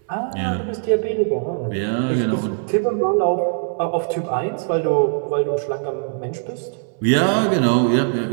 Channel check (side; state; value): left; silent; 65 dB below the other